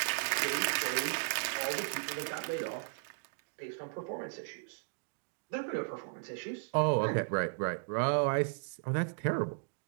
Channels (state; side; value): silent; left; digital silence